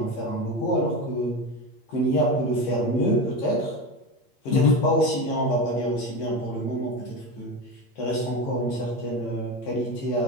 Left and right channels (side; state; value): right; late; 8.6 ms